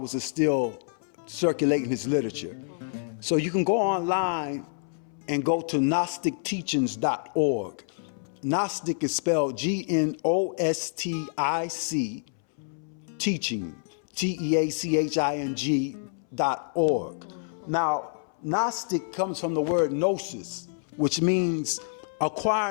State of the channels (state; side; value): silent; right; 60 dB below the other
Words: are still circulating his literature. So you can go online and go to GnosticTeachings.org. Gnostic is spelled Gnostic, teaching, TEACHING.org. Now, Gnostic comes from the word gnosis, which means